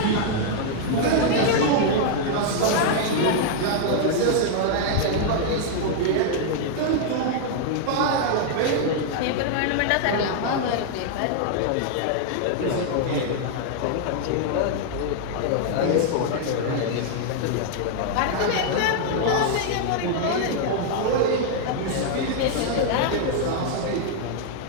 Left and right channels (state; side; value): different; both; correlation 0.00